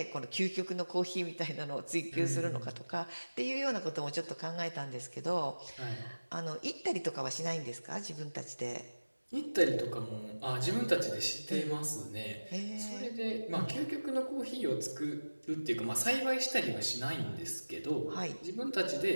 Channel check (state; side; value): inverted; both; correlation -1.00